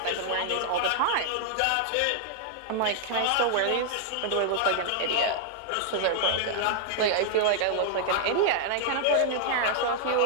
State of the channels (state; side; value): different; both; correlation -0.01